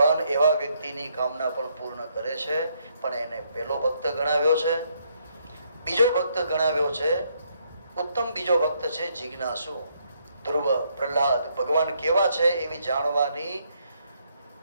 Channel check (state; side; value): inverted; both; correlation -0.73